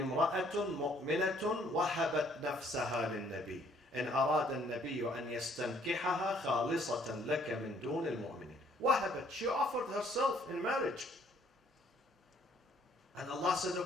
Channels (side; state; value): both; normal; correlation 0.63